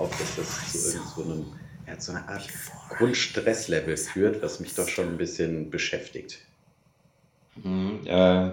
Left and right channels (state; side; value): identical; both; correlation 1.00